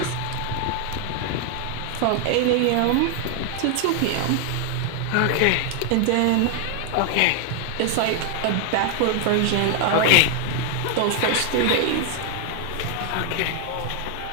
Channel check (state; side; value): different; both; correlation 0.00